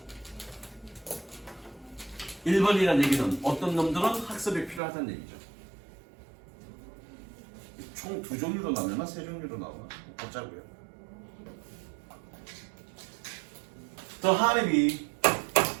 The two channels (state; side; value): drops out; left; at 4.8 s